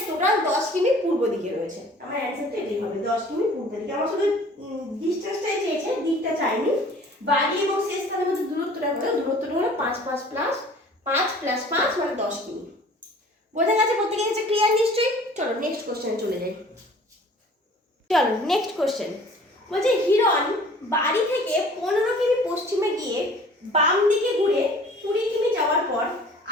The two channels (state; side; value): normal; both; correlation 0.49